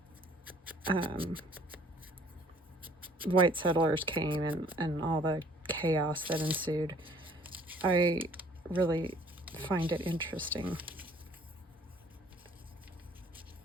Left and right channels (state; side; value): normal; both; correlation 0.57